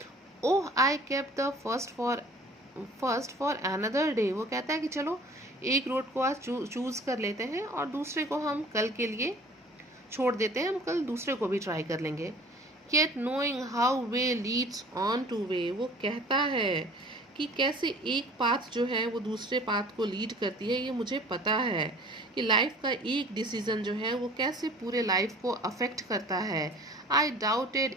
oh I kept the first for another day. वो कहता है कि चलो एक रोड को आज चूज़ कर लेते हैं और दूसरे को हम कल के लिए छोड़ देते हैं, हम कल दूसरे को भी ट्राई कर लेंगे. Yet knowing how way leads on to way. वो कहता है कि कैसे एक पाथ जो है वो दूसरे पाथ को लीड करती है, ये मुझे पता है कि लाइफ का एक डिसीजन जो है वो कैसे पूरे लाइफ को अफेक्ट करता है. आई doubted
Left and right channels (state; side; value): normal; both; correlation 0.48